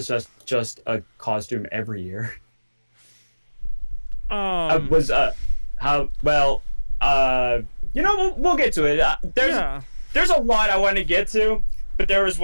just a costume every year. We'll get to it. There's a lot I want to get to, but there was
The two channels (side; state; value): both; inverted; correlation -1.00